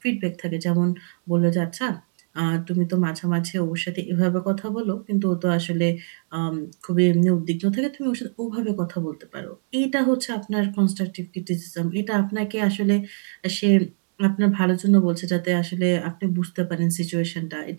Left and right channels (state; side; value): silent; left; digital silence